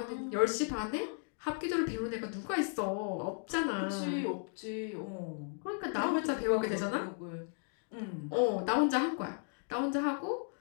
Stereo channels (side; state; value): right; silent; 54 dB below the other